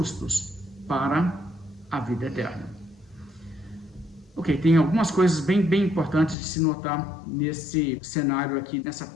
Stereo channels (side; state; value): right; drops out; at 6.4 s